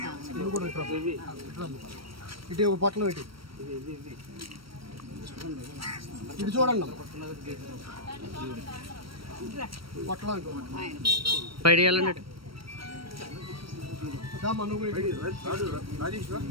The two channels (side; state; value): left; late; 0.75 ms